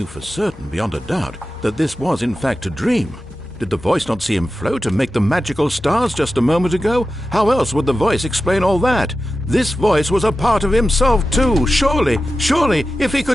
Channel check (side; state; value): both; normal; correlation 0.93